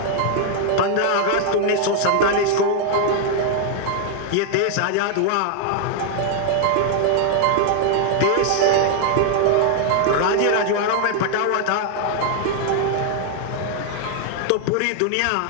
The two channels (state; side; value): different; both; correlation 0.00